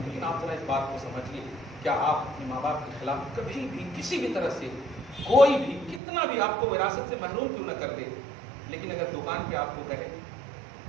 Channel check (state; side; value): drops out; left; at 6.0 s